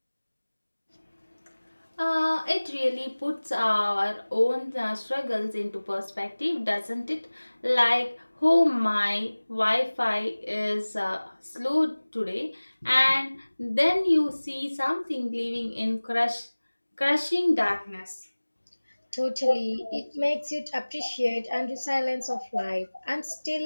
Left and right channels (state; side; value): inverted; both; correlation -1.00